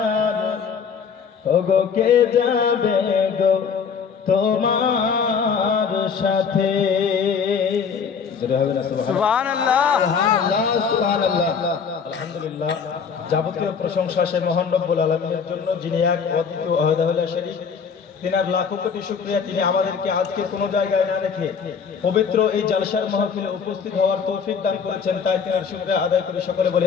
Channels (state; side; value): quieter; right; 6.3 dB